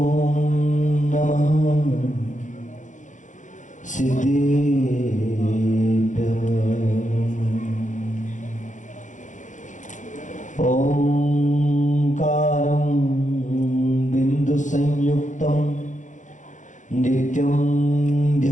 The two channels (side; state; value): right; late; 0.36 ms